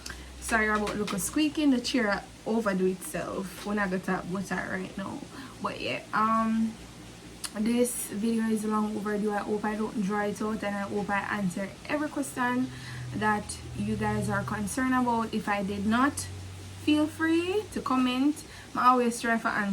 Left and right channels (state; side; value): identical; both; correlation 1.00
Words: Sorry about look squeaking, the chair overdo itself when I got up with that right now. But yeah, this video is long overdue. I hope I don't draw it out, and I hope I answer every question that you guys are concerned about. If I did not, feel free to comment. I always try for